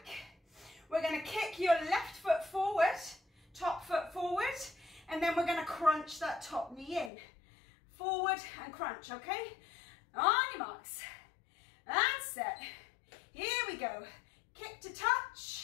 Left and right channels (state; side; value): drops out; right; at 7.1 s